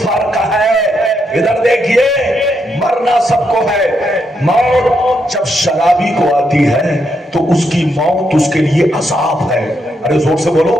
فرق ہے. ادھر دیکھیے, مرنا سب کو ہے. موت جب شرابی کو آتی ہے تو اس کی موت اس کے لیے عذاب ہے. ارے زور سے بولو,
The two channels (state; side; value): normal; both; correlation 0.80